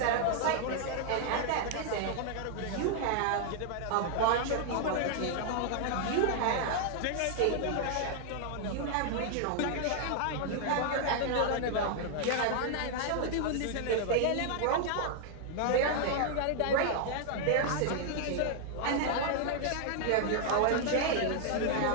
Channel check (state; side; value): different; both; correlation 0.00